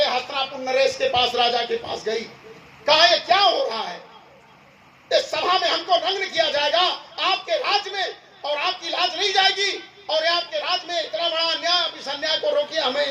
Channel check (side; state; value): both; identical; correlation 1.00